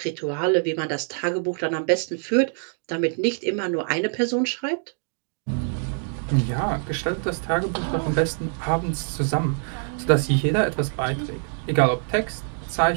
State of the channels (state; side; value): silent; left; 62 dB below the other